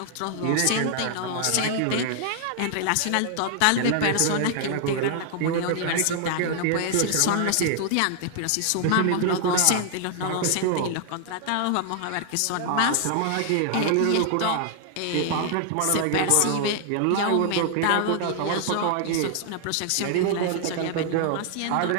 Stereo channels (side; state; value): both; different; correlation 0.00